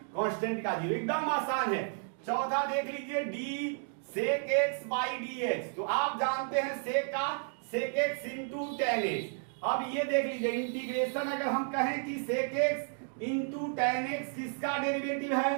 constant का जीरो, एकदम आसान है। चौथा देख लीजिए D sec X by D x, तो आप जानते हैं सेक का sec x into tan X. अब ये देख लीजिए इंटीग्रेशन अगर हम कहें कि sec x into tan x किसका डेरिवेटिव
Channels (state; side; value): silent; left; 56 dB below the other